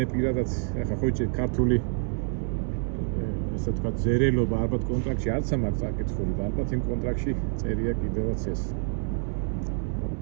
პირადად ეხლა ხო იცი ქართული ესე თქვა ზერელობა ალბათ კონტრაქტში არც ამაქვს წაკითხული და ალბათ იმ კონტრაქტში წერია კიდევაც ეს.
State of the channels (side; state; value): left; quieter; 39.0 dB